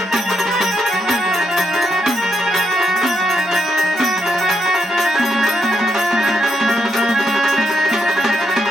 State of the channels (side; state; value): both; normal; correlation 0.79